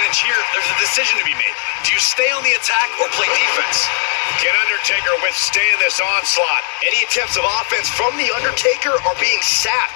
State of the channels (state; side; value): silent; right; digital silence